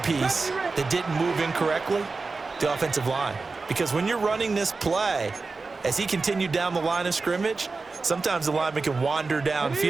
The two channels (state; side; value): quieter; left; 4.0 dB